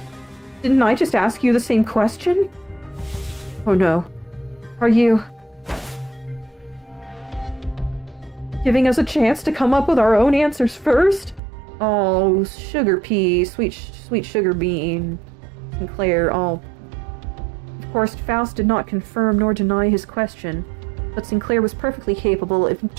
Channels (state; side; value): drops out; left; at 11.4 s